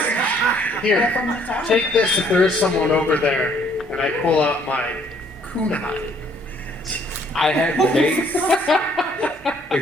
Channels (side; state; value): both; normal; correlation 0.63